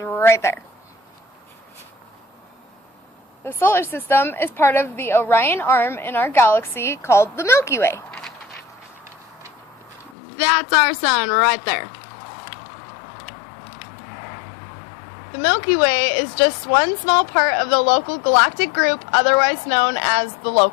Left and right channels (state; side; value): drops out; right; at 10.2 s